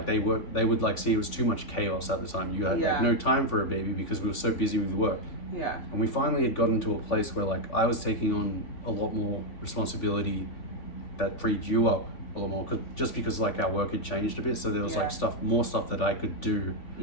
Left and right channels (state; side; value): late; right; 3.5 ms